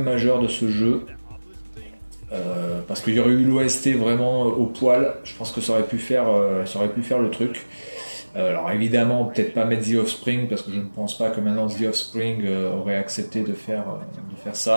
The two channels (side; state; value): both; inverted; correlation -1.00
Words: majeur de ce jeu. Parce qu'il y aurait eu l'OST vraiment au poil, je pense que ça aurait pu faire le truc. Alors évidemment, peut-être pas mettre The Offspring, parce que je ne pense pas que maintenant The Offspring aurait accepté de faire